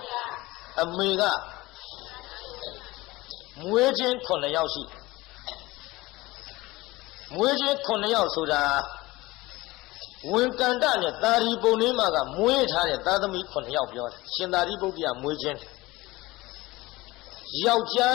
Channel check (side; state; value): right; quieter; 20.2 dB